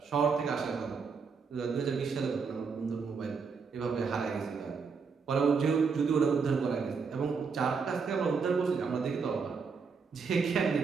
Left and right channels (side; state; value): left; quieter; 5.4 dB